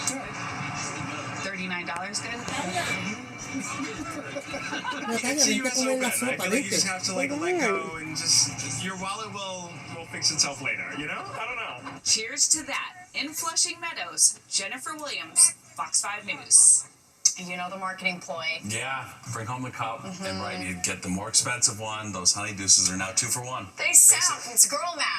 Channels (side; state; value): both; identical; correlation 1.00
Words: $39 good? See, you so good. I feel like you just have to like let go and just your wallet will fix itself later. You know? I don't know. Cheers to that. In Flushing Meadows, Jennifer Williams, Fox 5 News. You know the marketing ploy. Yeah, bring home the cup, and right, you get the more expensive one. Those Honey Deuces are now 2 for 1. They sound, it's girl